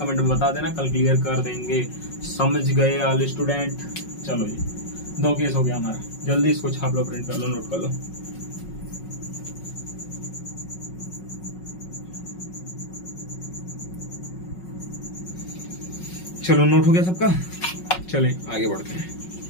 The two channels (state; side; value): late; right; 5.4 ms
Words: में बता देना, कल क्लियर कर देंगे। समझ गए ऑल स्टूडेंट? चलो जी, 2 केस हो गया हमारा। जल्दी इसको छाप लो, प्रिंट कर लो, नोट कर लो। चलो नोट हो गया सबका, चलें आगे बढ़ते हैं।